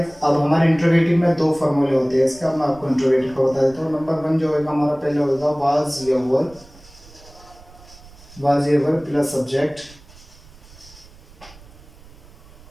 अब हमारे इंट्रोगेटिव में दो फॉर्मूले होते हैं इसका, मैं आपको इंट्रोगेटिव का बता देता हूँ। नंबर वन जो होगा हमारा पहले होगा वाज या वर्ब, वाज या वर्ब प्लस सब्जेक्ट।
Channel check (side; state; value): right; noise; rumble, 23 dB below the sound